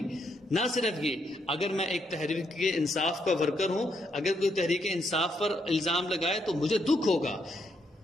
نہ صرف یہ, اگر میں ایک تحریک انصاف کا ورکر ہوں, اگر کوئی تحریک انصاف پر الزام لگائے تو مجھے دکھ ہوگا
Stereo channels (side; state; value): both; normal; correlation 0.76